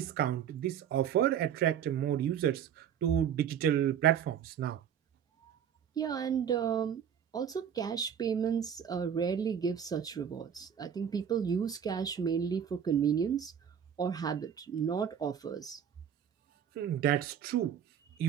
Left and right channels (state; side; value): quieter; left; 8.5 dB